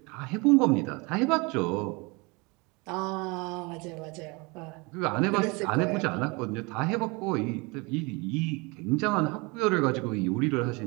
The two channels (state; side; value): quieter; left; 27.7 dB